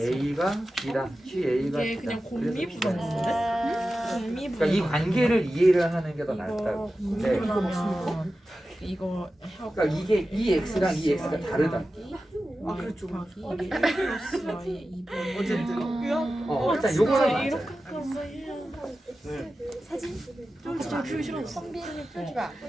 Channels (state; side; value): normal; both; correlation 0.94